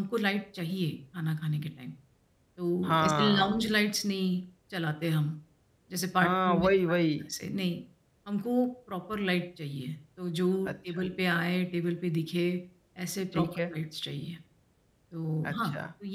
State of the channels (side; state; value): both; identical; correlation 1.00